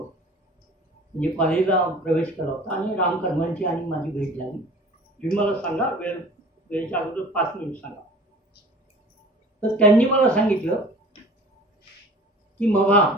म्हणजे कॉलेजला प्रवेश केला होता आणि रामकर्मांची आणि माझी भेट झाली. तुम्ही मला सांगा, वेळेच्या अगोदर 5 मिनिट सांगा. तर त्यांनी मला सांगितलं की मग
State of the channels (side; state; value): both; normal; correlation 0.45